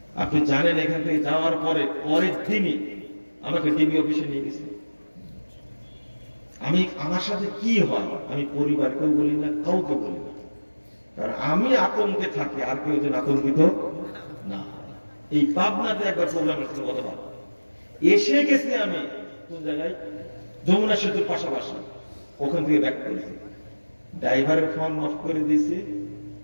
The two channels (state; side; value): inverted; both; correlation -1.00